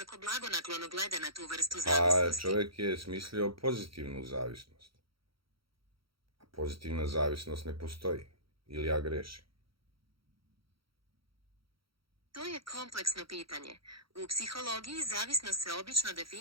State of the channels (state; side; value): late; left; 0.75 ms